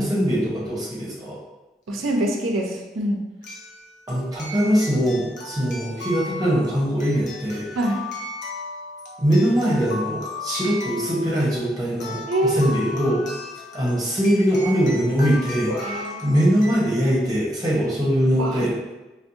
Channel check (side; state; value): both; normal; correlation 0.79